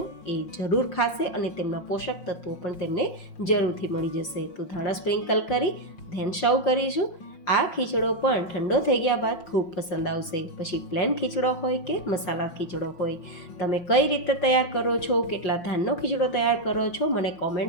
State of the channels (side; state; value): right; late; 5.7 ms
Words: એ જરૂર ખાશે અને તેમના પોષક તત્વો પણ તેમને જરૂરથી મળી જશે. તો ધાણા સ્પ્રિંકલ કરી ધેન સર્વ કરીશું. આ ખીચડો પણ ઠંડો થઈ ગયા બાદ ખૂબ પસંદ આવશે. પછી પ્લેન ખીચડો હોય કે મસાલા ખીચડો હોય, તમે કઈ રીતે તૈયાર કરો છો, કેટલા ધાનનો ખીચડો તૈયાર કરો છો, મને